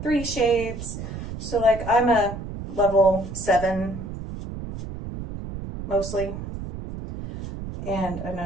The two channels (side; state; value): right; noise; rumble, 9 dB below the sound